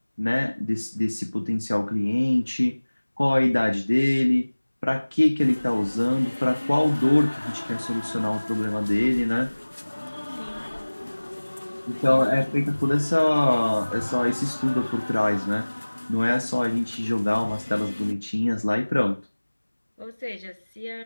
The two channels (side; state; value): both; inverted; correlation -1.00